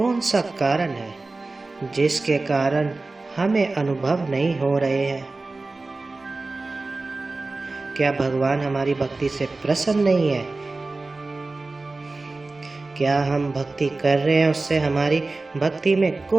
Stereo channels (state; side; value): quieter; left; 3.4 dB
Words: सा कारण है जिसके कारण हमें अनुभव नहीं हो रहे हैं? क्या भगवान हमारी भक्ति से प्रसन्न नहीं है? क्या हम भक्ति कर रहे हैं, उससे हमारी भक्ति में